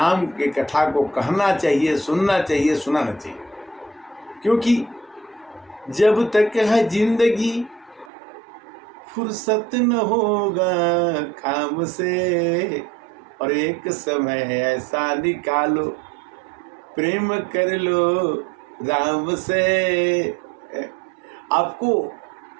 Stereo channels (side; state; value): left; drops out; at 8.1 s